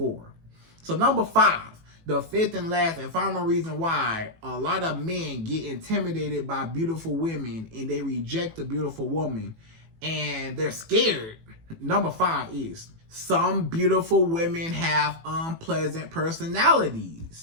So number 5. The fifth and last and final reason why a lot of men get intimidated by beautiful women and they reject a beautiful woman and they're scared. Number 5 is some beautiful women have unpleasant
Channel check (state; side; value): late; left; 18 ms